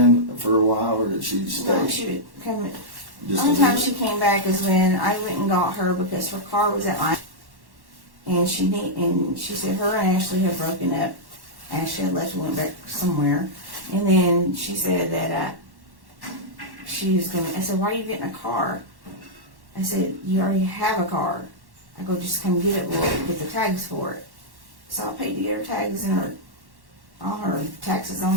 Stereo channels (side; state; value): left; late; 1.1 ms